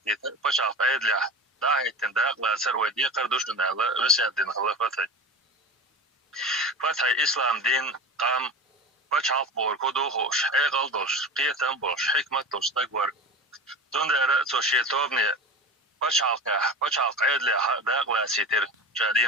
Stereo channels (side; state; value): both; normal; correlation 0.32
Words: بچال فايد لح داهي تنداق لأسر ويدي قردوشن على وسيا دين خلفتي فتحي إسلام دين قام بچال بور كدوخوش حيقل دوش قيتن بوش حكمت دوش تكبر دون دارة توشي توبني بچال قيد لح داق لأسيتر جادين